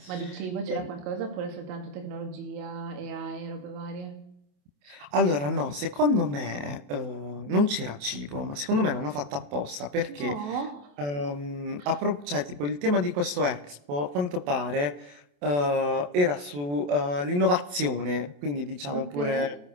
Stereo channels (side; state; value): left; late; 28 ms